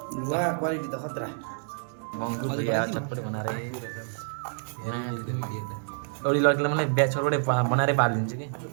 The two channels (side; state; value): left; silent; digital silence